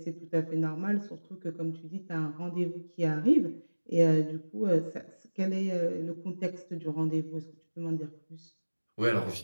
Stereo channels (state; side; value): inverted; both; correlation -1.00